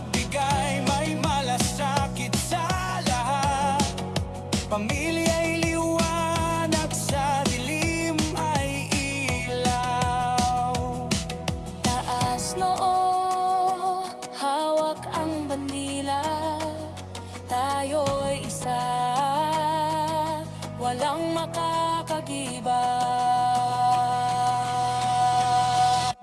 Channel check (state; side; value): identical; both; correlation 1.00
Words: may malasakit sa lahat. Pamilya'y liwanag, sa dilim ay ilaw. Taas noo, hawak ang bandila, tayo'y isa.